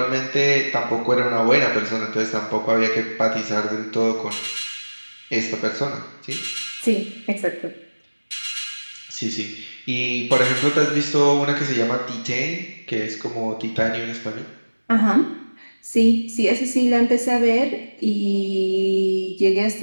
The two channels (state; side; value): inverted; both; correlation -1.00